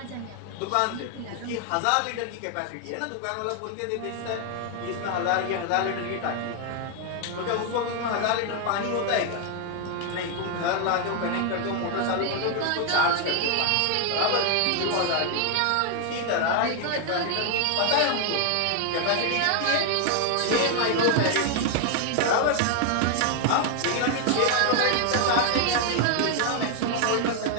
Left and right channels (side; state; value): both; different; correlation 0.00